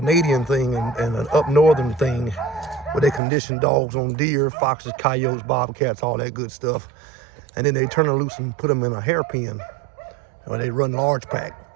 thing and an up northern thing where they condition dogs on deer, foxes, coyotes, bobcats, all that good stuff. And then they turn them loose and put them in a hairpin, or they run large pack.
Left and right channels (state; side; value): drops out; left; at 3.2 s